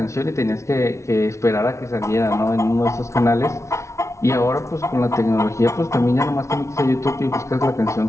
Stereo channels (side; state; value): right; late; 0.14 ms